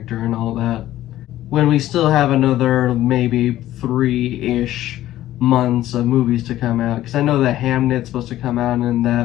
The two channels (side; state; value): right; quieter; 14.0 dB